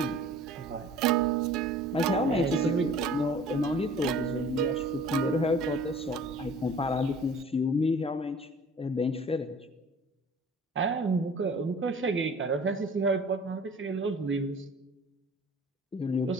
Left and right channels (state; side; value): normal; both; correlation 0.47